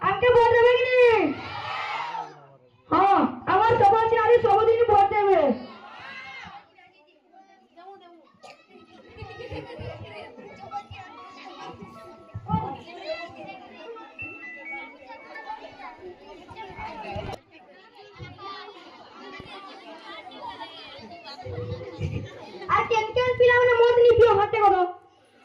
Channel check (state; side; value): identical; both; correlation 1.00